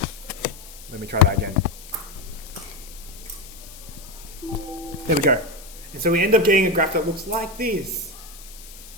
Let me try that again. There we go. And so we end up getting a graph that looks like this.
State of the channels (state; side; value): noise; left; hiss, 18 dB below the sound